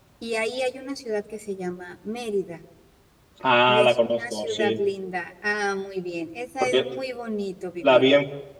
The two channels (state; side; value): identical; both; correlation 1.00